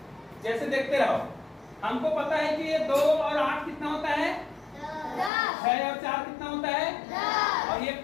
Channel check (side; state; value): right; drops out; at 5.3 s